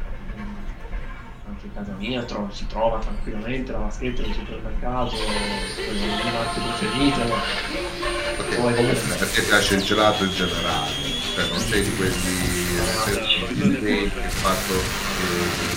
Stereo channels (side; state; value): both; identical; correlation 1.00